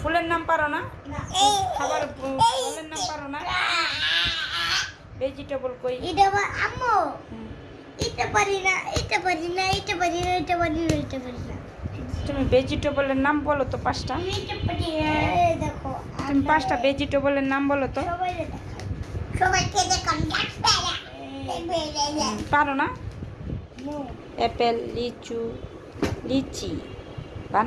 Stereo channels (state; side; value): identical; both; correlation 1.00